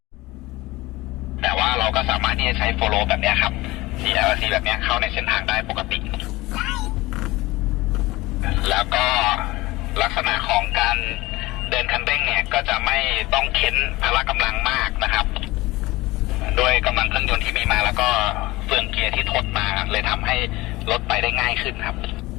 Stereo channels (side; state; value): right; quieter; 20.1 dB